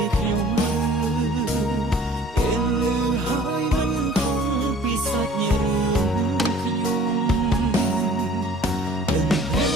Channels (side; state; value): both; normal; correlation 0.51